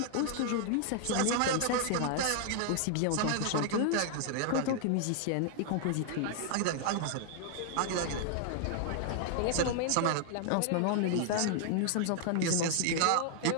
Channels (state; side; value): different; both; correlation 0.00